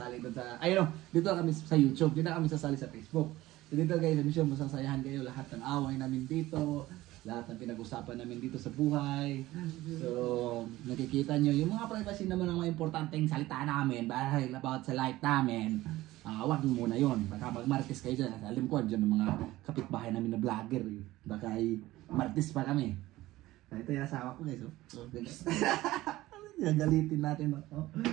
doon sa, ayun, dito na kami sa YouTube, dito na kami sasali sa Facebook. So dito guys, I'm sure masasayahan kayo lahat ng away namin dito. Lahat ng pinag-usapan namin dito sa buhay. So, nakikita nyo, yung mga privacy naman ang mga importanteng salita namin dahil about sa life namin. Wag muna yun. Baka mag-martis kayo dyan. Alam ko, dyan ng mga kapitbahay namin na vlogger. Eh. Baka ay martis pa kami. Ito yung asawa ko guys. Oh. Gagalitin natin. Oh.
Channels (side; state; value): left; quieter; 17.1 dB